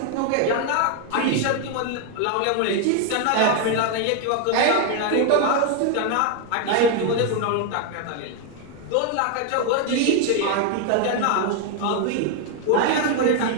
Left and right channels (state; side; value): different; both; correlation 0.01